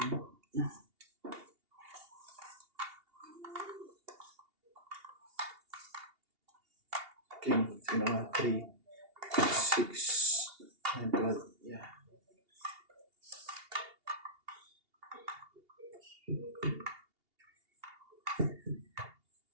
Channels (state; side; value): late; left; 2.8 ms